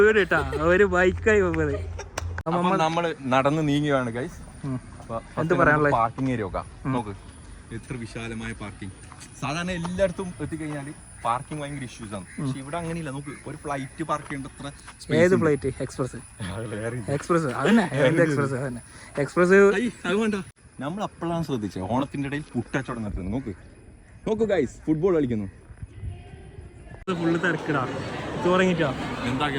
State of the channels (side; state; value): both; identical; correlation 1.00